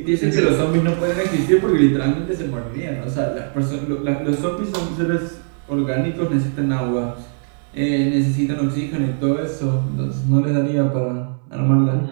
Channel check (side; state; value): left; silent; digital silence